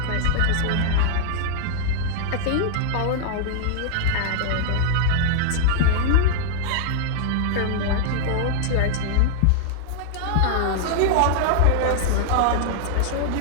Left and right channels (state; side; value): different; both; correlation -0.01